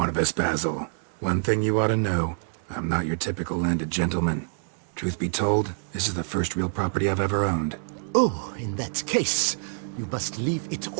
Basil. One thing you ought to know. I'm not your typical landed gentleman. Truth be told, this is the first real property I've ever owned. Oh, in that case, you must leave it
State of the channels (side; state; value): left; silent; 61 dB below the other